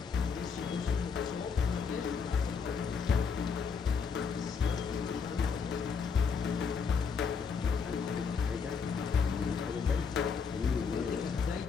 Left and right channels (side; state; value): right; quieter; 5.8 dB